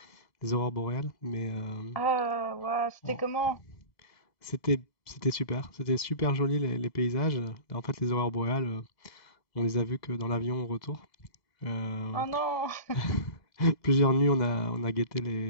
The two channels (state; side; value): late; right; 1.8 ms